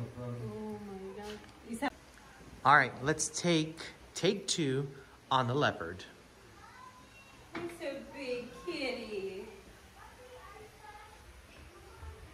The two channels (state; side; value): identical; both; correlation 1.00